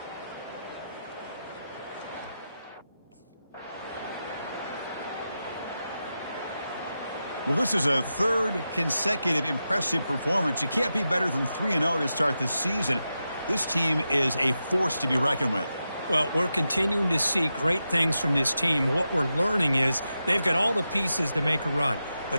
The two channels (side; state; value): both; inverted; correlation -0.89